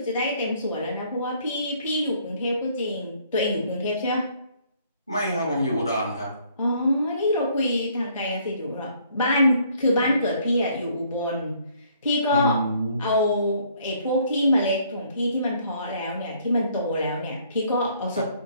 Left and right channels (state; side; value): inverted; both; correlation -0.63